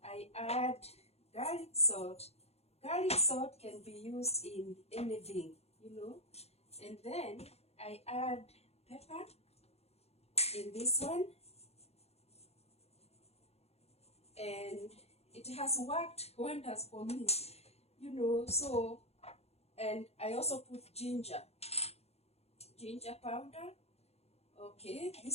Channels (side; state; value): right; late; 0.30 ms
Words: I add garlic salt. Garlic salt can be used in anything, And then I add pepper in this one. And it has worked wonders for me, so, and I also put ginger powder. Okay,